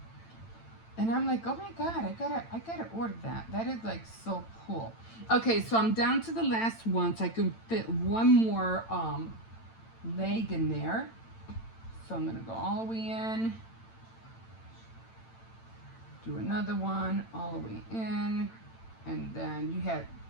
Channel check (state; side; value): late; right; 8.9 ms